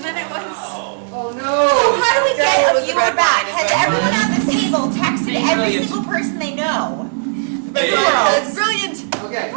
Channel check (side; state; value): left; silent; digital silence